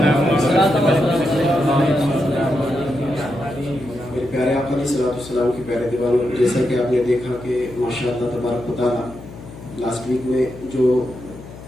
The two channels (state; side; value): noise; left; hum, 15 dB below the sound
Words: मेरे प्यारे आका अलैहिस्सलाम के प्यारे दीवानों, जैसा कि आपने देखा कि माशाअल्लाह तबारक व तआला लास्ट वीक में जो